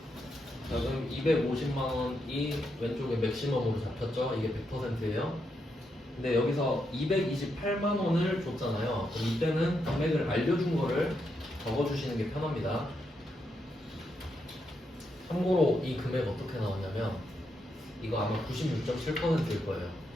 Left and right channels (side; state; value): both; normal; correlation 0.82